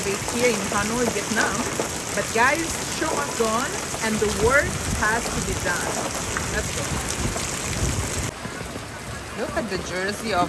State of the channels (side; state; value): both; identical; correlation 1.00